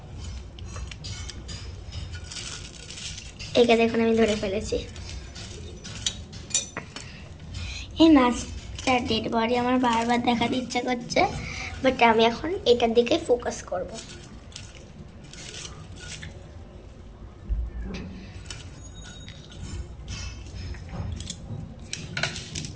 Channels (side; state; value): both; identical; correlation 1.00